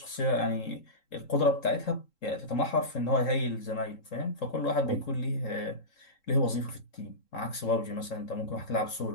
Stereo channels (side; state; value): right; late; 3.7 ms